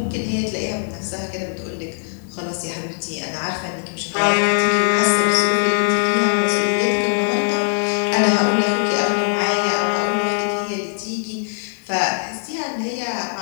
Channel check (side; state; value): right; silent; digital silence